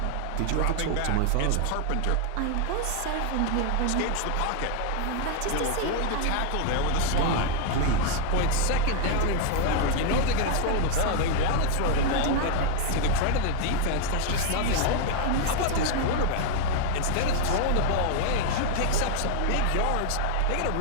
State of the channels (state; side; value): different; both; correlation 0.00